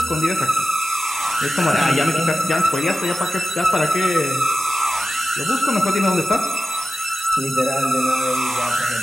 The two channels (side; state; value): both; normal; correlation 0.94